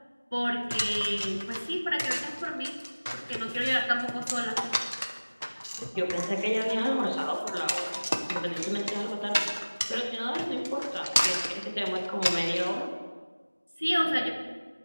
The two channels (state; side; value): inverted; both; correlation -1.00